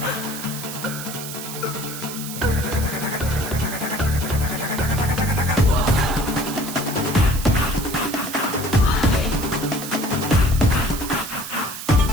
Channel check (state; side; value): noise; right; hiss, 9 dB below the sound